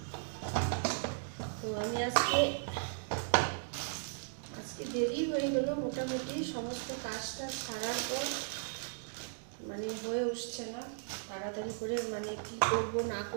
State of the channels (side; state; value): left; silent; digital silence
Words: তো আমি আজকে দেরি হয়ে গেল, মোটামুটি সমস্ত কাজটা সারার পর মানে হয়ে উঠছে না তাড়াতাড়ি করে, মানে কি করব না